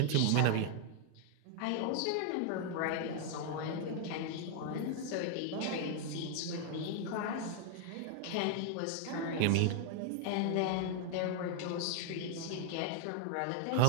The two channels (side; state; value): both; different; correlation 0.00